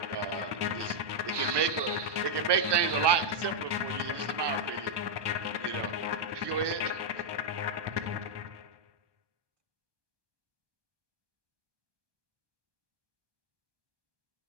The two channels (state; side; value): late; left; 1.2 ms